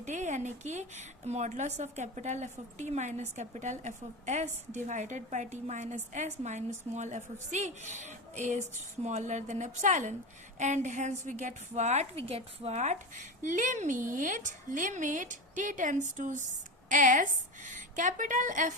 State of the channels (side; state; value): both; normal; correlation 0.21